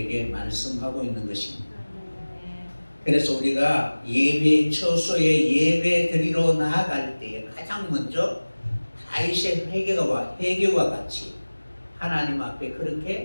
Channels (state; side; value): inverted; both; correlation -1.00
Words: 말씀하고 있는 것입니다. 그래서 우리가 예배 처소에 예배 드리러 나아갈 때에 가장 먼저 다윗의 회개와 같이 하나님 앞에